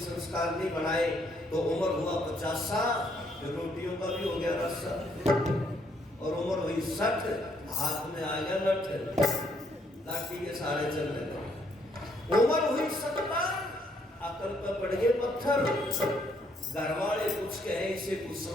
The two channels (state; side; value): normal; both; correlation 0.70